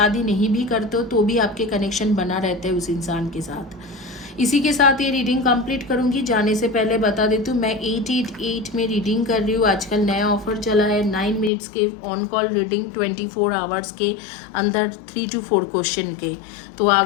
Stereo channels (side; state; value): right; drops out; at 11.5 s